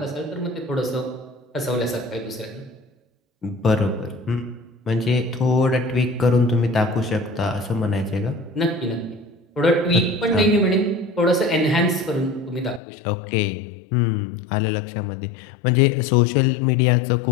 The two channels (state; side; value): drops out; right; at 12.8 s